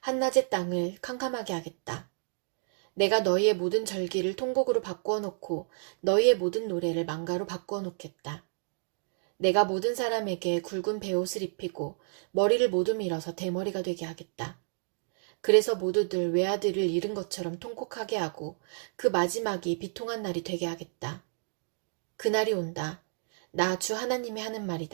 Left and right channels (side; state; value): left; silent; digital silence